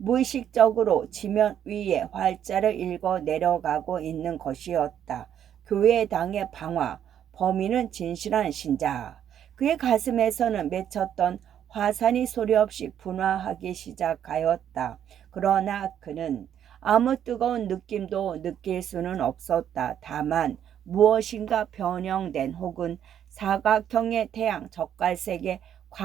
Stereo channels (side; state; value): left; quieter; 9.7 dB